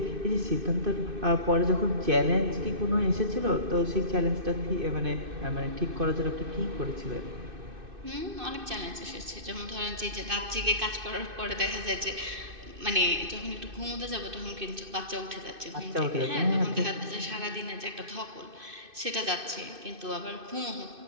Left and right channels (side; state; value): left; late; 2.6 ms